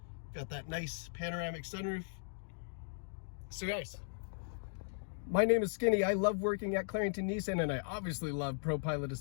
Got that nice panoramic sunroof. So guys, my name is Skinny. I love working at Clarington Nissan, and I obviously love Pro Pilot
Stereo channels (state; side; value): silent; right; digital silence